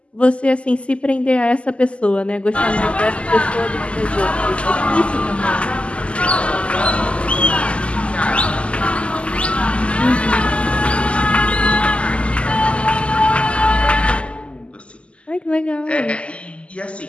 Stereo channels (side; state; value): right; late; 0.056 ms